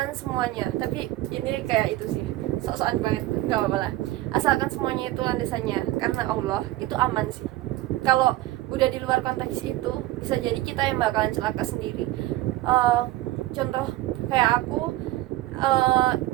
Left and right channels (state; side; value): quieter; left; 16.7 dB